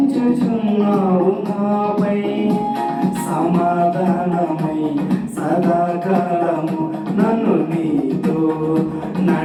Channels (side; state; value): both; identical; correlation 1.00